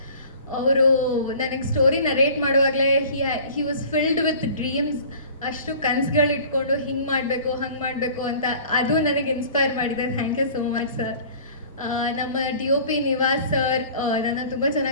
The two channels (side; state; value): both; inverted; correlation -0.46